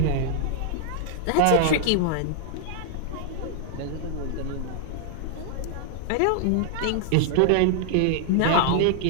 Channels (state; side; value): different; both; correlation -0.01